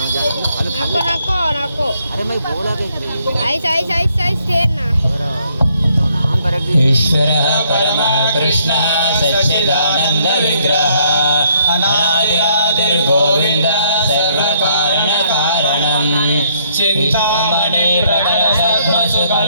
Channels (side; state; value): both; inverted; correlation -0.68